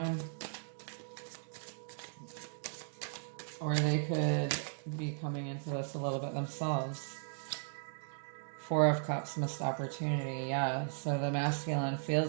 Or they could be coming into this a little bit themselves. Four of Cups, missed opportunity. Yeah, so the masculine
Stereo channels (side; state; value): left; silent; digital silence